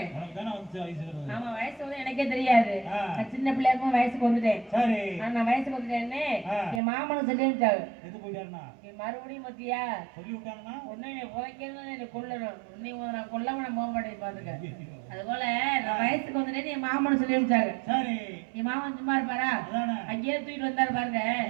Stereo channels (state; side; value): drops out; left; at 6.8 s